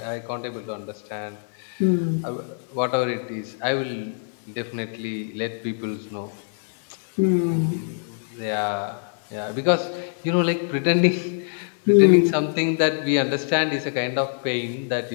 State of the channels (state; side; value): silent; right; digital silence